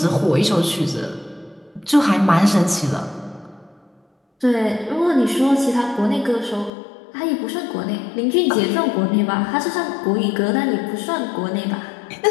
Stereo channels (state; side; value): drops out; right; at 6.7 s